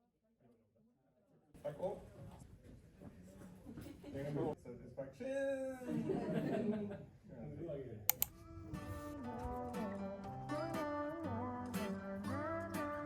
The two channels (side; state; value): both; identical; correlation 1.00